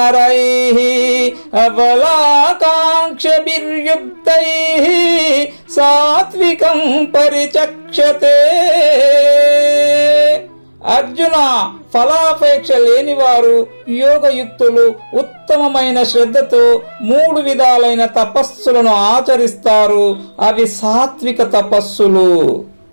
అబలాకాంక్షభిర్యుక్తైః సాత్వికం పరిచక్షతే. అర్జున, ఫలాపేక్ష లేనివారు, యోగయుక్తులు ఉత్తమమైన శ్రద్ధతో 3 విధాలైన తపస్సులను ఆచరిస్తారు. అవి సాత్విక తపస్సులు.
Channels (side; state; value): both; inverted; correlation -1.00